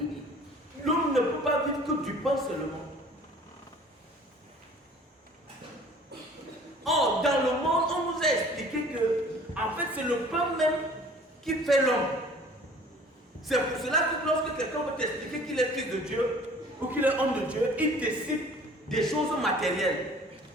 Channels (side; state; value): both; normal; correlation 0.50